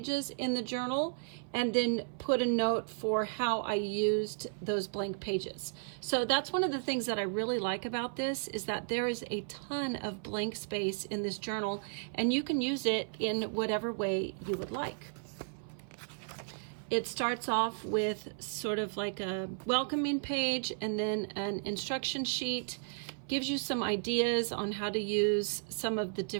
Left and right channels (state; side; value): silent; left; 55 dB below the other